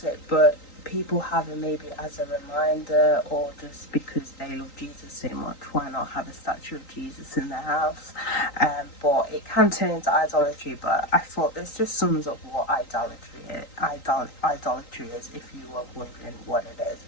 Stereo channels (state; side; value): late; right; 3.9 ms